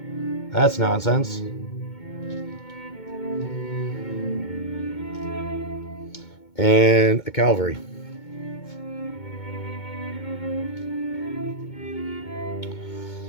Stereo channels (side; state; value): right; late; 2.2 ms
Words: That's nonsense. And a cavalry.